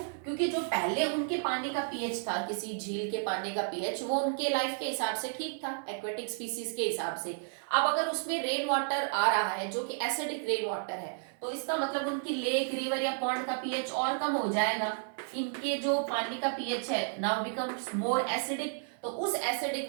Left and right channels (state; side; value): silent; left; 56 dB below the other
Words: क्योंकि जो पहले उनके पानी का पीएच था, किसी झील के पानी का पीएच, वो उनके लाइफ के हिसाब से ठीक था, एक्वेटिक स्पीसीज के हिसाब से। अब अगर उसमें रेन वाटर आ रहा है जो कि एसिडिक रेन वाटर है, तो इसका मतलब उनकी लेक, रिवर या पॉन्ड का पीएच और कम हो जाएगा। इनके जो पानी का पीएच है नाउ बिकम्स मोर एसिडिक। तो उस